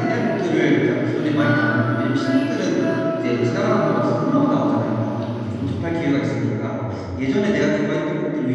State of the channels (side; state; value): both; identical; correlation 1.00